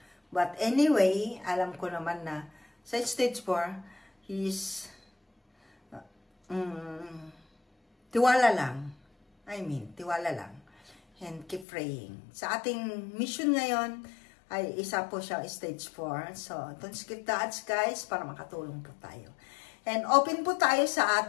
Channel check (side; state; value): right; drops out; at 11.7 s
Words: But anyway, alam ko naman na sa stage 4 he's tiwala lang. Tiwala lang. And keep praying. Sa ating mission ngayon, ay isa po siya stage 4. So, don't skip the ads guys, para makatulong po tayo. And open po tayo sa